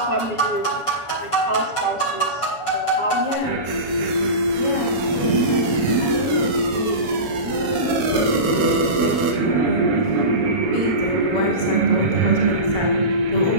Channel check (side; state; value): right; late; 7.1 ms